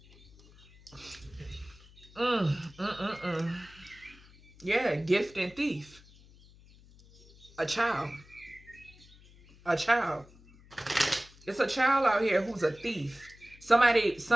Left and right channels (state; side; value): noise; left; hum, 24 dB below the sound